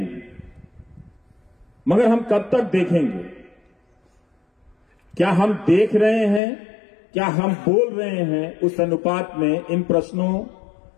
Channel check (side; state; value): right; drops out; at 6.4 s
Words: मगर हम कब तक देखेंगे? क्या हम देख रहे हैं? क्या हम बोल रहे हैं? उस अनुपात में इन प्रश्नों